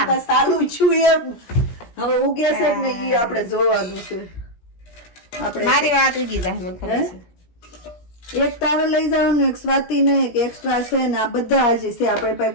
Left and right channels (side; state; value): right; late; 17 ms